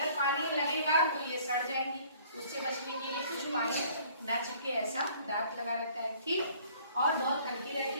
पानी लगेगा तो ये सड़ जाएंगी, उससे बचने के लिए कुछ पानी ना चिपके ऐसा दांत लगा रहता है। ठीक। और बहुत हल्की रहती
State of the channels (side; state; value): both; inverted; correlation -0.56